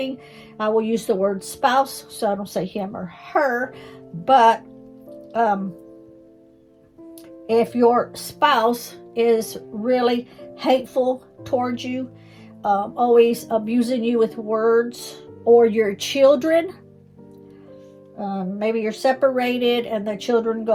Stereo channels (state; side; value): identical; both; correlation 1.00